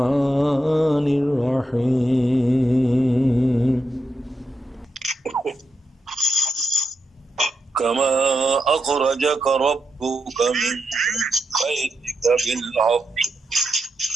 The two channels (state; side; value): normal; both; correlation 0.85